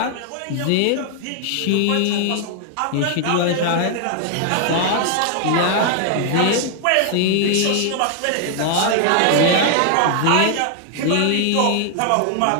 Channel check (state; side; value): different; both; correlation 0.00